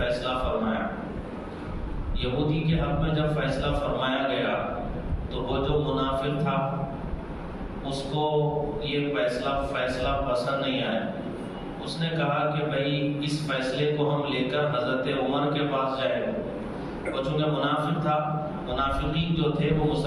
فرمایا. یہودی کے حق میں جب فیصلہ فرمایا گیا تو وہ جو منافق تھا اس کو یہ فیصلہ پسند نہیں آیا. اس نے کہا کہ بھائی اس فیصلے کو ہم لے کر حضرت عمر کے پاس جائیں. وہ چونکہ منافق تھا، منافقین جو تھے وہ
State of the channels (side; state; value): both; identical; correlation 1.00